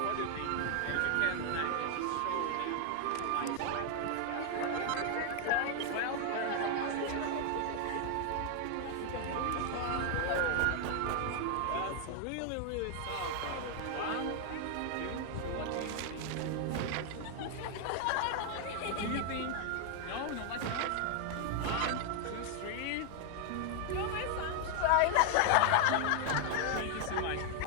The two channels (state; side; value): different; both; correlation 0.00